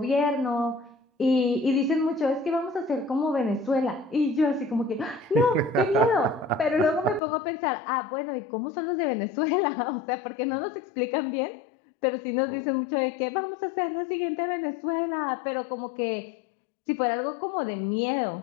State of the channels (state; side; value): drops out; right; at 7.2 s